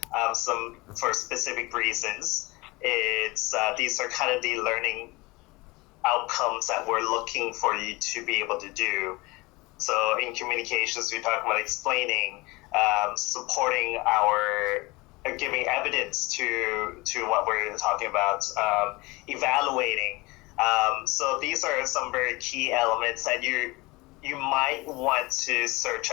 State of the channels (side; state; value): right; quieter; 23.4 dB